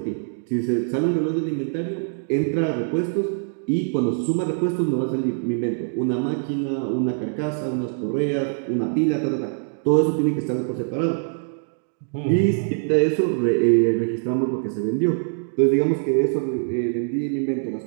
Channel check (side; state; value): left; silent; digital silence